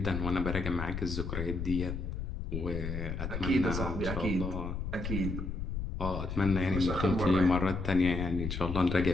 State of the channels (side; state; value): left; noise; rumble, 4 dB below the sound